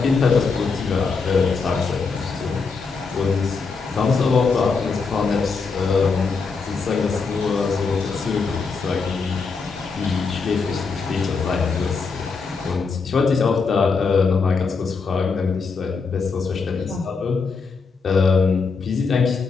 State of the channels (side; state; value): right; quieter; 4.8 dB